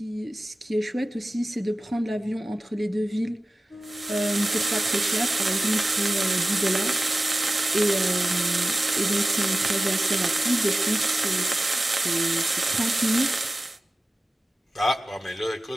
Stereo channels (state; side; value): normal; both; correlation 0.96